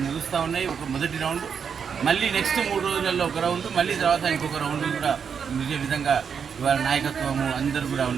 ముగుస్తూ ఉన్నాయి. ఒక మొదటి రౌండ్, మళ్ళీ నెక్స్ట్ 3 రోజులలో ఒక రౌండ్, మళ్ళీ తర్వాత ఇంకొక రౌండ్ కూడా ముగిసే విధంగా ఇవాళ నాయకత్వము అందరూ కూడా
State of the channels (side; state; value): left; quieter; 6.8 dB